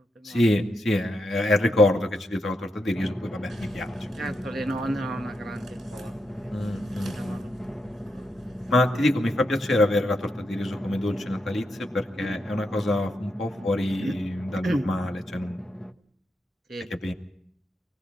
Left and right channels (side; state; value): both; normal; correlation 0.84